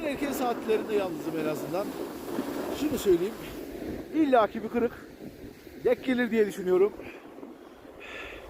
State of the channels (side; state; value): both; identical; correlation 1.00